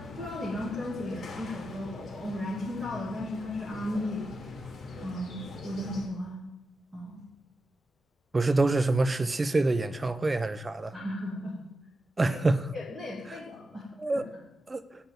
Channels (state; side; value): normal; both; correlation 0.90